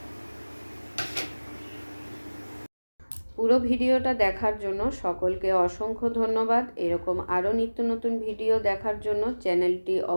পুরো ভিডিওটা দেখার জন্য সকলকে অসংখ্য ধন্যবাদ। এরকম আরও নিত্য নতুন ভিডিও দেখার জন্য চ্যানেলটি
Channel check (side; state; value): both; inverted; correlation -1.00